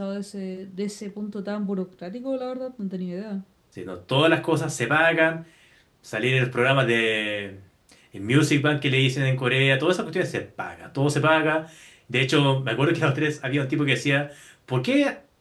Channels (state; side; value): identical; both; correlation 1.00